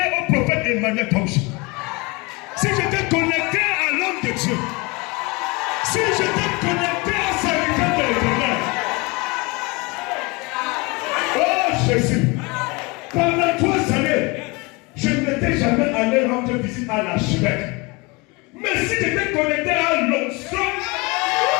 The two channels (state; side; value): quieter; right; 26.7 dB